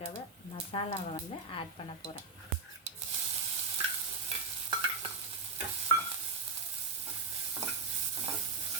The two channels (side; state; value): left; quieter; 4.2 dB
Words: மசாலாவை வந்து ஆட் பண்ண போகிறேன்.